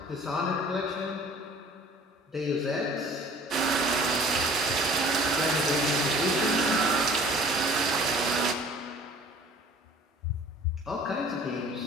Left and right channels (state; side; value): normal; both; correlation 0.50